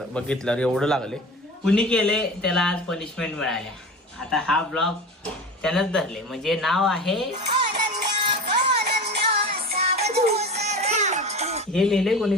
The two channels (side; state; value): both; normal; correlation 0.32